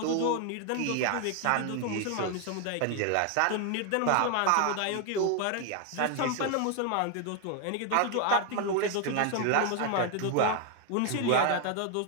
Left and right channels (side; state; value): both; different; correlation 0.01